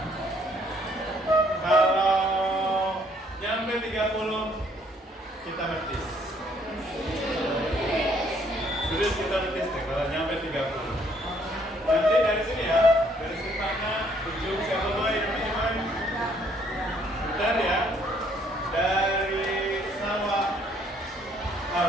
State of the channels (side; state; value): both; normal; correlation 0.65